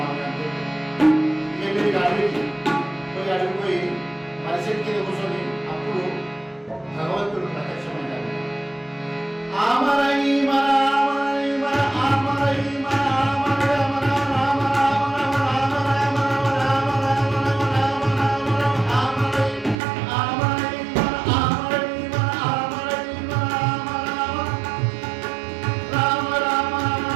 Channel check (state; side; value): drops out; left; at 19.8 s